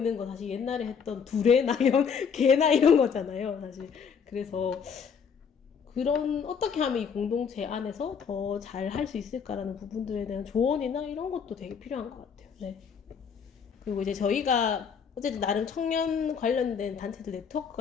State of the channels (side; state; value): right; quieter; 6.6 dB